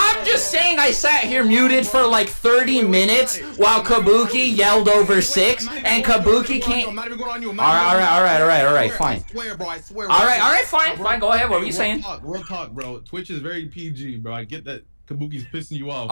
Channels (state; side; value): inverted; both; correlation -1.00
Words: just saying I sat here muted for like 30 minutes while Kabuki yelled over 6 and Kabuki can't. I'm not even going on you. All right, fine. I swear, bro. I swear. All right, fine. Go ahead. What were you saying? Real talk, bro. Twitch is very PG, bro. I get that Kabuki's pissing you off.